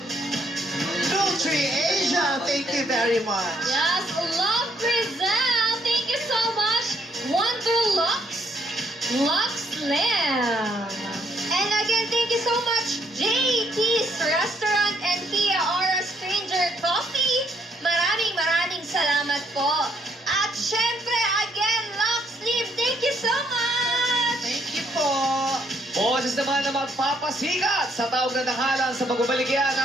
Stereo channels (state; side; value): normal; both; correlation 0.70